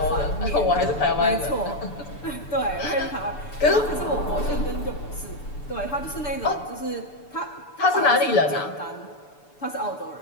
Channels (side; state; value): right; late; 6.9 ms